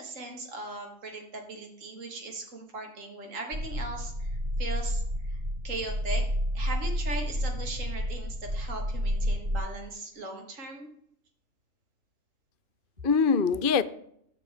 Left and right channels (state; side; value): late; left; 2.5 ms